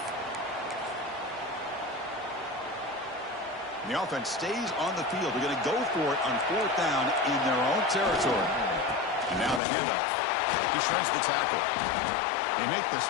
And the offense stays on the field. They're going to go for it on 4th down in their own territory. And now the handoff. He shreds the tackle. They make the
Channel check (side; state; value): right; drops out; at 9.6 s